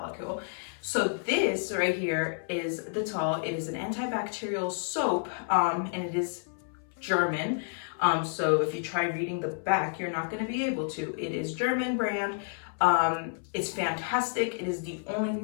So this right here is the Dettol. It is an antibacterial soap, and it is German. So if you try reading the back, you're not going to be able to. It is German brand. It's fantastic. It is the only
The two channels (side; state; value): right; silent; 58 dB below the other